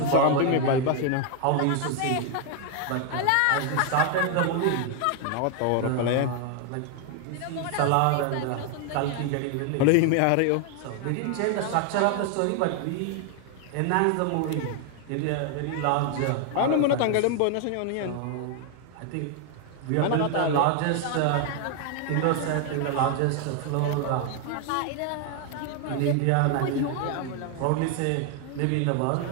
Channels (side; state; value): both; different; correlation 0.01